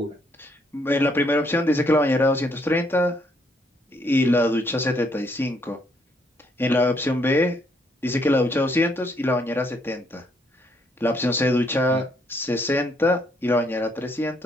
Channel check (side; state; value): both; normal; correlation 0.71